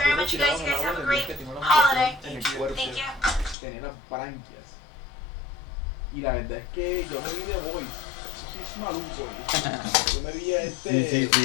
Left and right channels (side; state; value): right; drops out; at 3.6 s